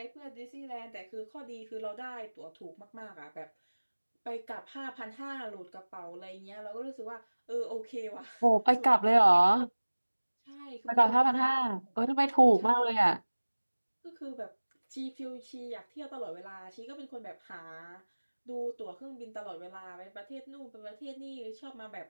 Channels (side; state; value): both; inverted; correlation -1.00